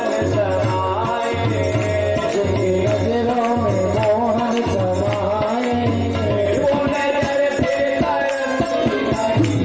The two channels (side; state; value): both; identical; correlation 1.00